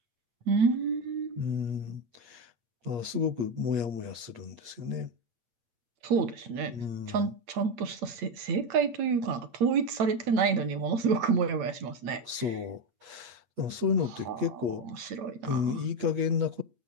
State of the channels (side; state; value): left; late; 8.6 ms